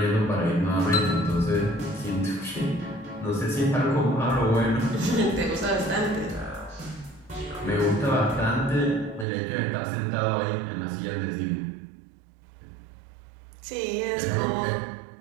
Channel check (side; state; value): left; drops out; at 9.2 s